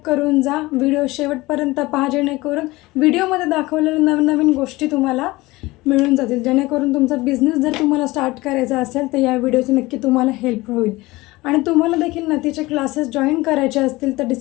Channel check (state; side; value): quieter; right; 20.5 dB